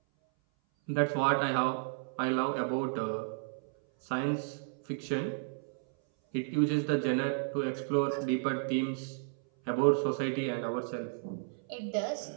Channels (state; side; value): silent; left; 56 dB below the other